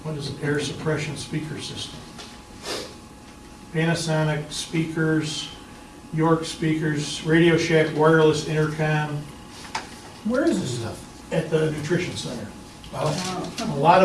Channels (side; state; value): both; identical; correlation 1.00